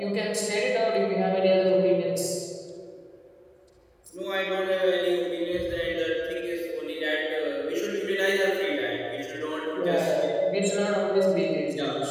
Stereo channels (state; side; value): identical; both; correlation 1.00